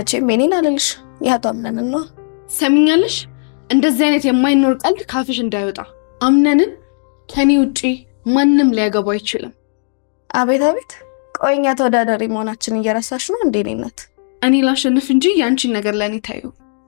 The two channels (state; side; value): silent; right; digital silence